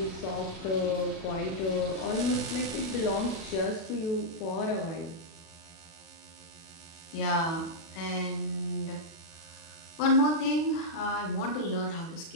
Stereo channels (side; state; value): right; late; 37 ms